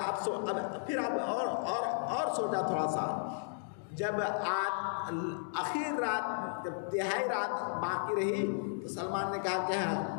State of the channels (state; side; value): silent; right; digital silence